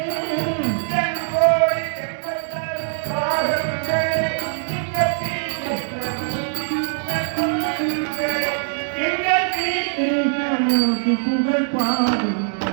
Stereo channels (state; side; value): silent; left; digital silence